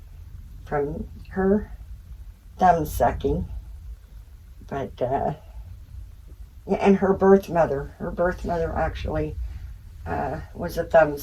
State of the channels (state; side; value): identical; both; correlation 1.00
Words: from her thumb sucking. But, yeah, and her birth mother actually was a thumb